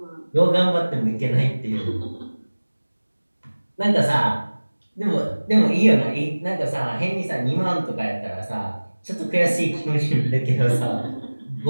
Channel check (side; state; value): both; inverted; correlation -1.00